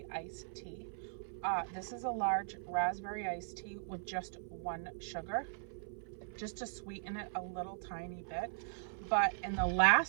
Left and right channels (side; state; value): left; silent; 52 dB below the other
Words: iced tea. This is a large raspberry iced tea with just one sugar, just to sweeten it a little tiny bit. But in the